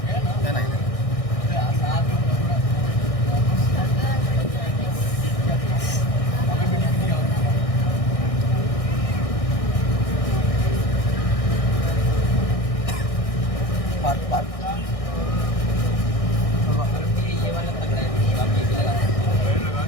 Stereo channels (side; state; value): right; late; 1.6 ms